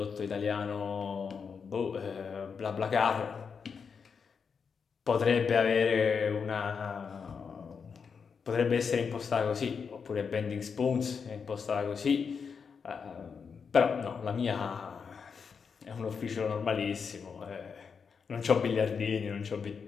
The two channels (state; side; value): quieter; right; 6.0 dB